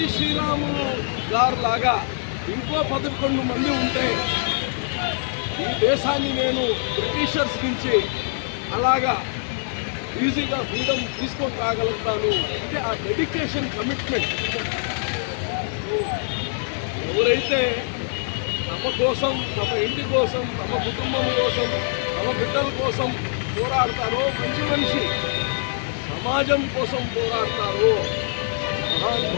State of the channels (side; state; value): right; silent; 63 dB below the other